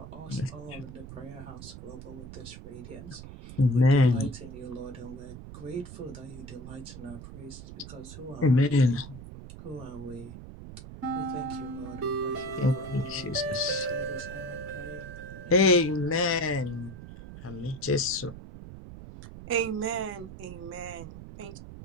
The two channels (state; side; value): noise; right; rumble, 13 dB below the sound